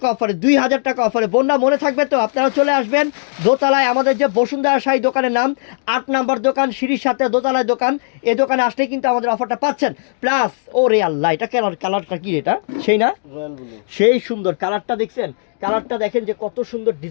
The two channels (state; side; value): silent; right; digital silence